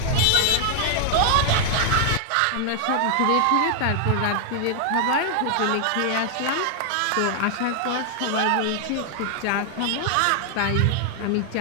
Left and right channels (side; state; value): both; different; correlation 0.00